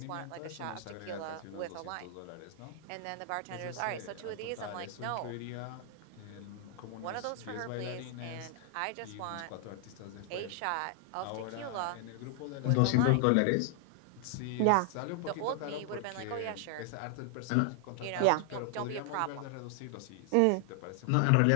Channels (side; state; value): both; different; correlation 0.00